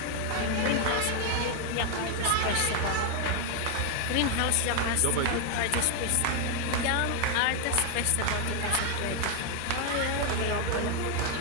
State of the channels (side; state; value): both; different; correlation 0.01